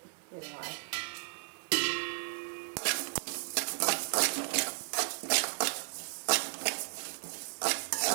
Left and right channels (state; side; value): silent; left; digital silence